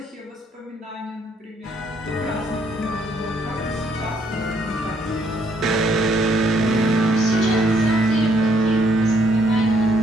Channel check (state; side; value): normal; both; correlation 0.69